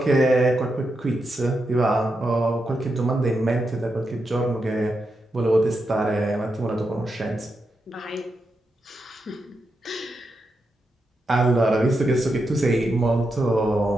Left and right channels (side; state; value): both; normal; correlation 0.86